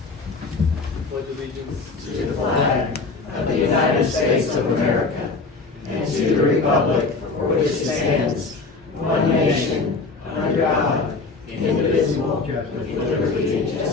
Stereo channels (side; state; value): right; quieter; 3.9 dB